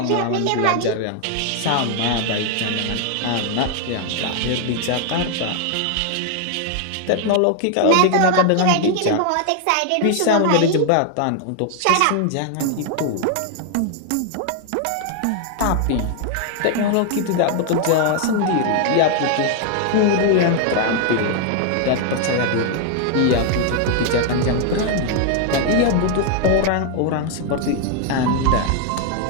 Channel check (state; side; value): different; both; correlation 0.00